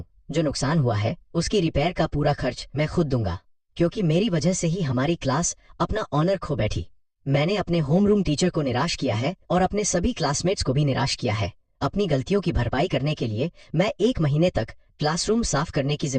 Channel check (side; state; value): both; identical; correlation 1.00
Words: जो नुकसान हुआ है उसकी रिपेयर का पूरा खर्च मैं खुद दूंगा, क्योंकि मेरी वजह से ही हमारी क्लास अपना ऑनर खो बैठी। मैंने अपने होम रूम टीचर को निराश किया है और अपने सभी क्लासमेट्स को भी निराश किया है। अपनी गलतियों की भरपाई करने के लिए मैं 1 महीने तक क्लासरूम साफ करने की